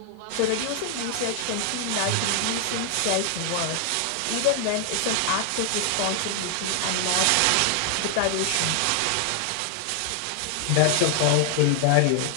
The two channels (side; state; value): both; different; correlation 0.00